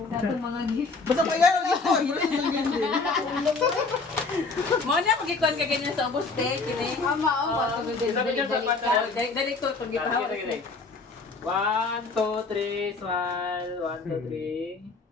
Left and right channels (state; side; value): quieter; right; 4.0 dB